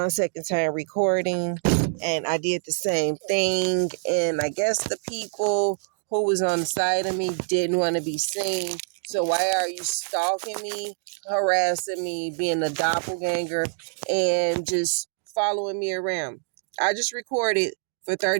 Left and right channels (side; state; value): left; silent; 57 dB below the other